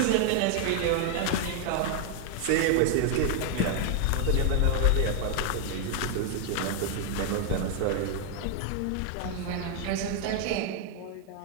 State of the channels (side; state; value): both; different; correlation 0.01